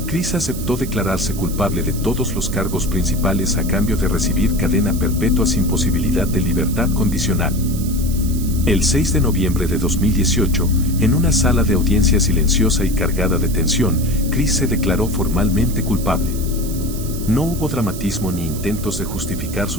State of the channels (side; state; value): right; noise; hiss, 12 dB below the sound